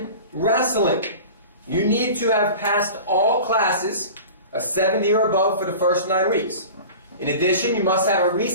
wrestling, you need to have passed all classes, a 70 or above for the first 9 weeks. In addition, you must have a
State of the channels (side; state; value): both; inverted; correlation -0.37